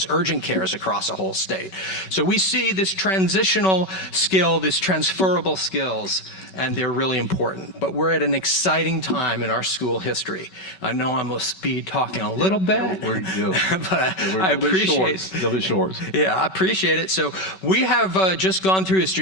urgent cares across the whole state. So we see this transitional skill, this transferable skills, and they're really important. But we're at an exciting time in our school history. I know I must be talking a little bit, but I appreciate They'll be short. Yeah, I appreciate it. So we have just gone through a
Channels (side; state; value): right; late; 5.3 ms